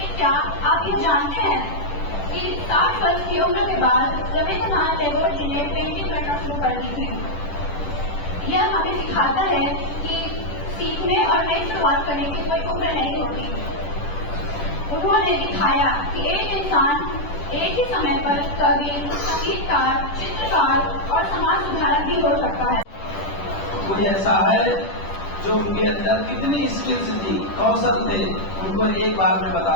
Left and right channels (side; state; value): right; late; 10 ms